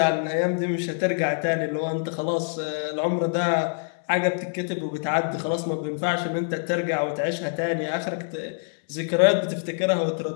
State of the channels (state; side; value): silent; right; 61 dB below the other